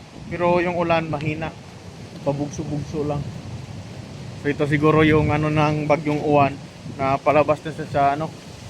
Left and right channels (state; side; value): identical; both; correlation 1.00